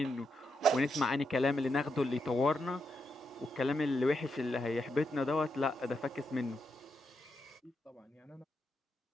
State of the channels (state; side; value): normal; both; correlation 0.83